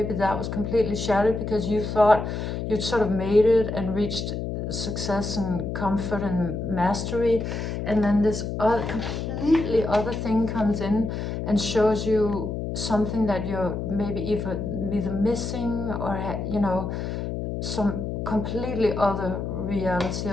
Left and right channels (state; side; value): noise; left; hum, 4 dB below the sound